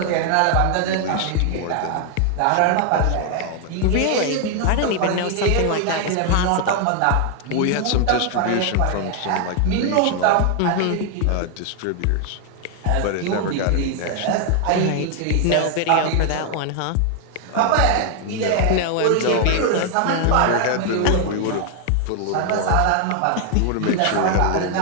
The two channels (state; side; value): different; both; correlation 0.00